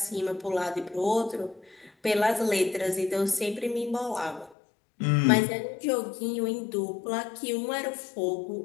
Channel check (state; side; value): drops out; right; at 4.5 s